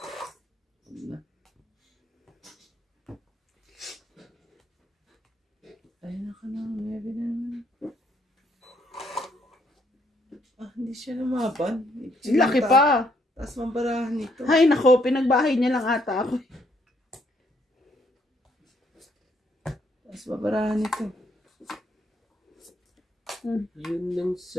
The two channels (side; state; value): both; normal; correlation 0.70